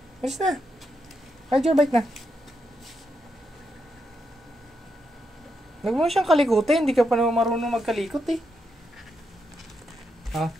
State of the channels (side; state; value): both; normal; correlation 0.82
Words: Bilis na. Ride your bike na. Huwag mo siyang kalikutin. Hindi ka pa naman marunong magkalikot eh.